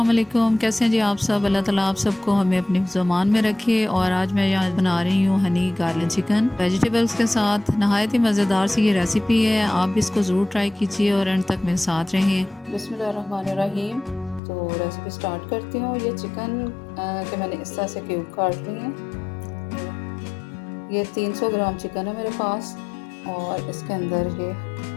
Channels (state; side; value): drops out; right; at 14.4 s